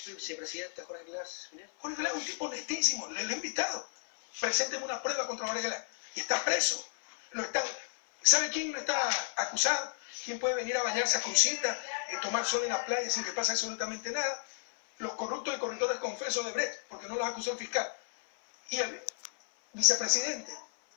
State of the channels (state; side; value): silent; right; 56 dB below the other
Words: vicepresidente Jorge Glass. Jorge Glass es un tipo honestísimo, le he invitado. Presénteme una prueba contra Jorge Glass. Y está preso. ¿Sabe quién no está acusado? ¿Quién puede venir a bañarse a Crucita, tomar sol en la playa sin que pase absolutamente nada? Los corruptos y corruptores confesos de Brecht, porque no los acusó el fiscal. Y el vicepresidente,